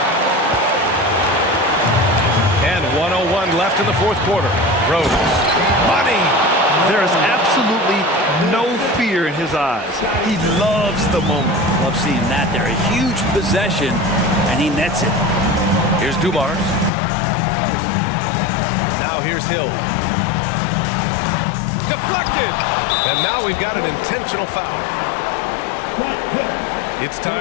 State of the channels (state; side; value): drops out; right; at 16.9 s